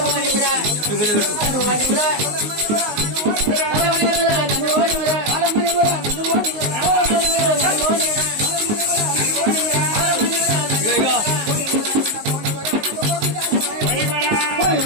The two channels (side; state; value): left; late; 19 ms